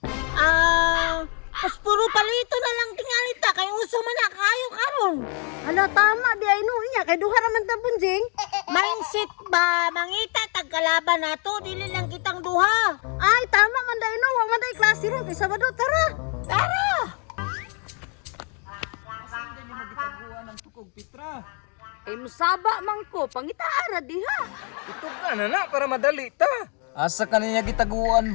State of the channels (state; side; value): quieter; right; 37.6 dB